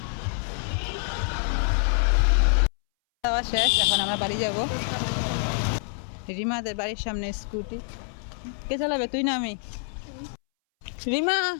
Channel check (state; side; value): silent; right; 61 dB below the other